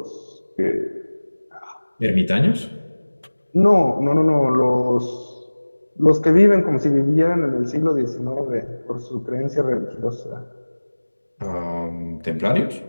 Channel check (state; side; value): inverted; both; correlation -1.00